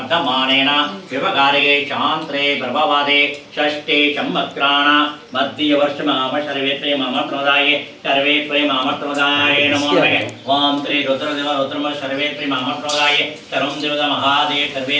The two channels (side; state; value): both; identical; correlation 1.00